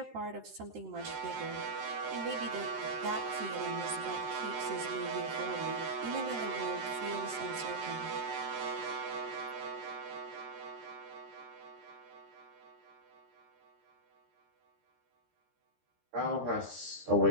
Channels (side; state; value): left; late; 13 ms